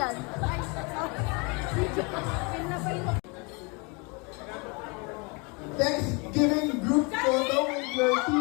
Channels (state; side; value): quieter; right; 30.5 dB